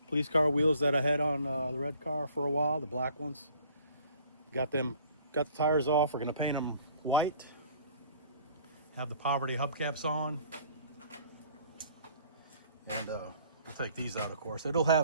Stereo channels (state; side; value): inverted; both; correlation -0.55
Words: police car wheels that I had on the red car for a while, the black ones. Got the tires off. We're gonna paint them white. Have the poverty hubcaps on, and we'll take these out, of course. It'll